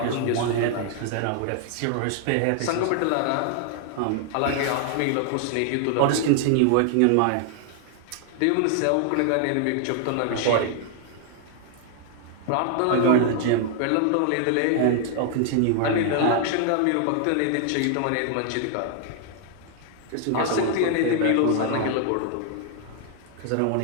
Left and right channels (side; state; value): both; different; correlation 0.00